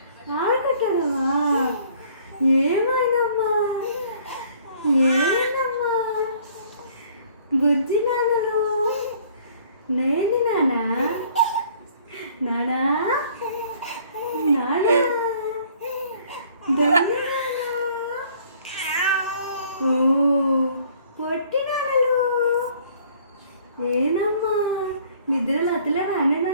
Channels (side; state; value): both; inverted; correlation -0.57